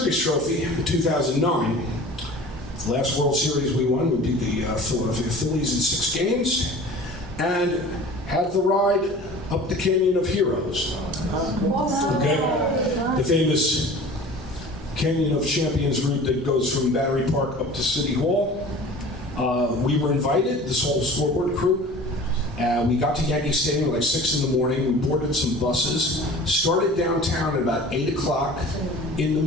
trophy in 2009. Last World Series we won, we beat the Philadelphia Phillies in 6 games, and had the ride up the Canyon of Heroes. Okay, the famous Canyon of Champions route that goes from Battery Park up to City Hall. We were invited, this whole scoreboard crew. We got to Yankee Stadium like 6 in the morning. We boarded some buses, started downtown at about 8 o'clock in the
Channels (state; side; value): normal; both; correlation 0.42